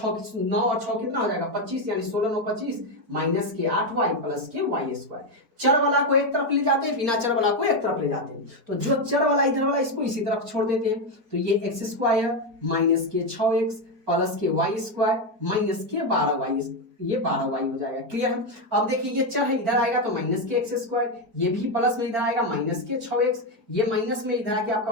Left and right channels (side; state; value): left; late; 4.5 ms